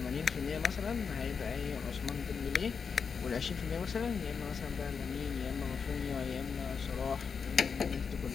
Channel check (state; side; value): quieter; right; 5.9 dB